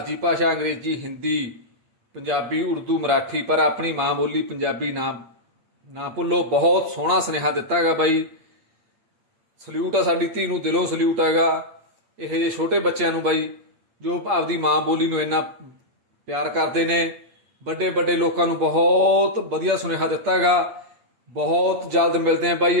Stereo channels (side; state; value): left; late; 8.6 ms